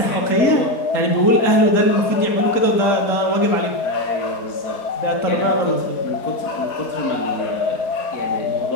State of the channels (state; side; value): late; right; 4.2 ms